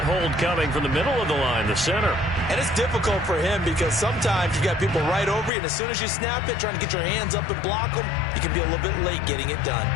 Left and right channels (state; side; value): drops out; right; at 5.5 s